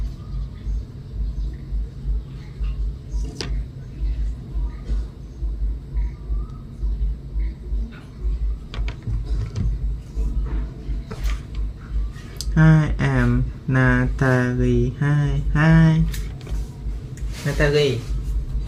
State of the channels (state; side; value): identical; both; correlation 1.00